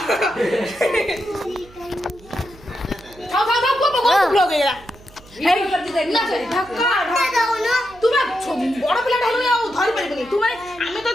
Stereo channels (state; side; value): noise; right; hum, 23 dB below the sound